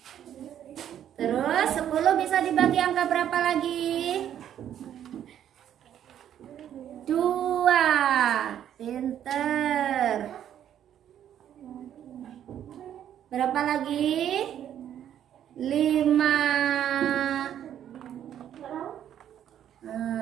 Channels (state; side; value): quieter; left; 10.3 dB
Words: Terus 10 bisa dibagi angka berapa lagi? 2. Pinter. Berapa lagi? 5.